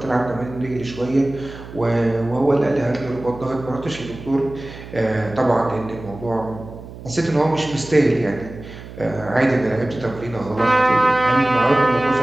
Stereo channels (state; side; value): noise; right; hum, 14 dB below the sound